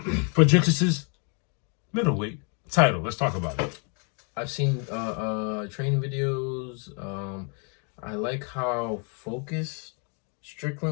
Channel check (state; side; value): quieter; right; 37.9 dB